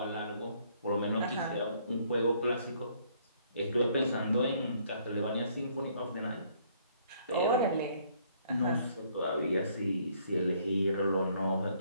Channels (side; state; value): both; inverted; correlation -0.65